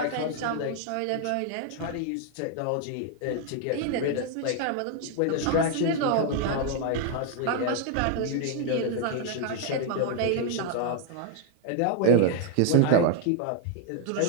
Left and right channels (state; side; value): different; both; correlation 0.01